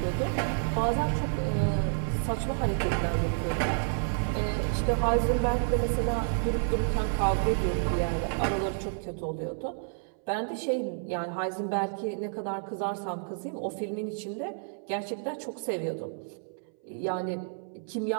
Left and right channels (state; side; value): silent; left; 58 dB below the other